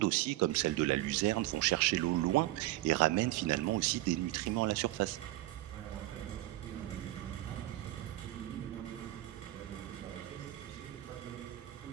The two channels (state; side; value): quieter; left; 16.7 dB